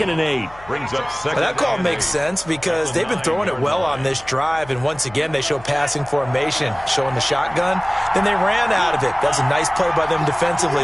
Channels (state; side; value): noise; left; hum, 21 dB below the sound